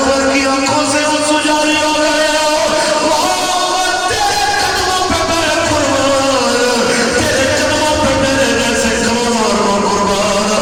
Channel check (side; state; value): both; identical; correlation 1.00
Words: کی آنکھوں سے آنسو جاری ہو گئے